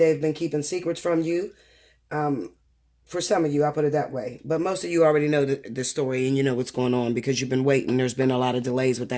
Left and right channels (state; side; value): identical; both; correlation 1.00